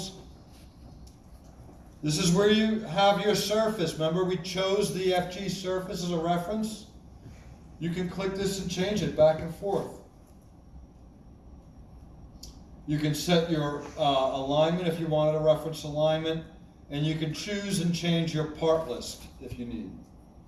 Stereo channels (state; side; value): identical; both; correlation 1.00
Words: This is where you have your surface. Remember, we chose the FG surface as a reference? You can click this and change it back and forth. You can set your alignment if you wanted a reference alignment, and you can choose and change your part list if you need.